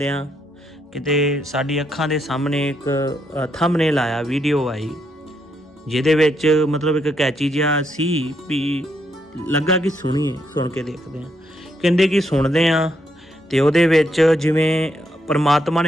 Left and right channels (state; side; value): normal; both; correlation 0.77